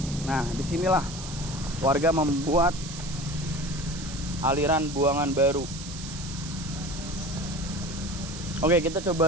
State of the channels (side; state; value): right; noise; hiss, 11 dB below the sound